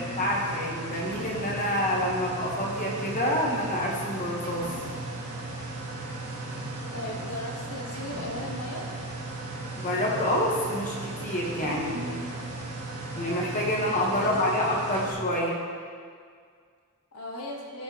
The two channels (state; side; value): normal; both; correlation 0.09